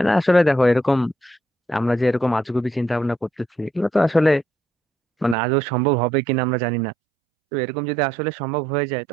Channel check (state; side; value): drops out; left; at 5.4 s